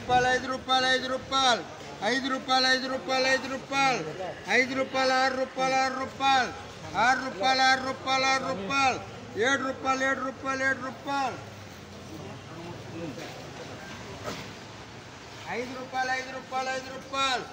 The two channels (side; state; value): both; identical; correlation 1.00